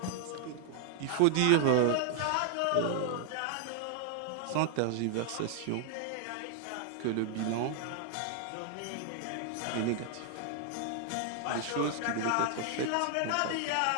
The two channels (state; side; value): different; both; correlation 0.00